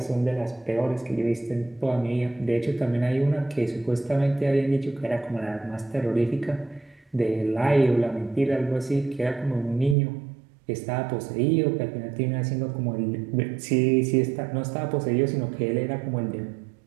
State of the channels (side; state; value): left; drops out; at 10.0 s